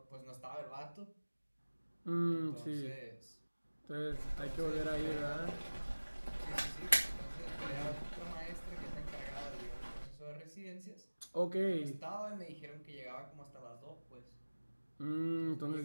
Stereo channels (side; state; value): both; inverted; correlation -1.00